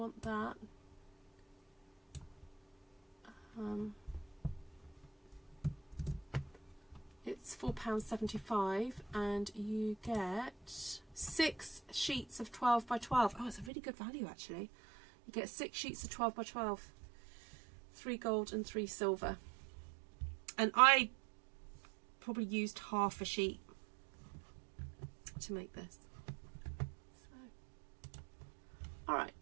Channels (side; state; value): left; drops out; at 13.7 s